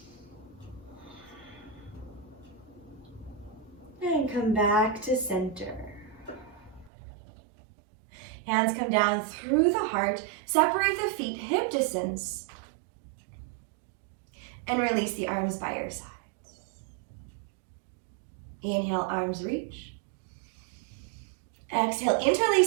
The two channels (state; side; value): drops out; left; at 6.9 s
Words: And come back to center. Hands come down through the heart. Separate the feet hip distance. And release the arms by your sides. Inhale, arms reach. Exhale,